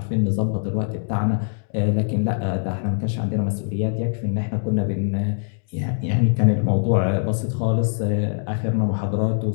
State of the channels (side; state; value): right; silent; 64 dB below the other